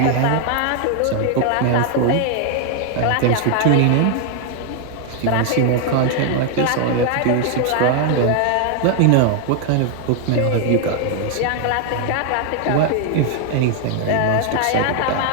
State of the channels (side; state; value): both; different; correlation 0.00